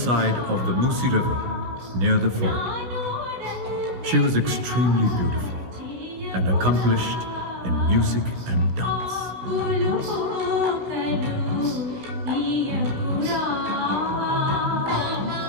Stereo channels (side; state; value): left; late; 16 ms